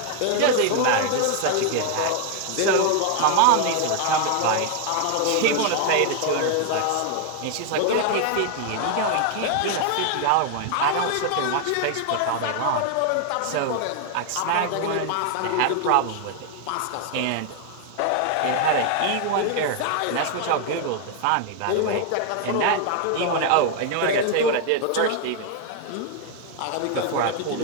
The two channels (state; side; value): different; both; correlation 0.00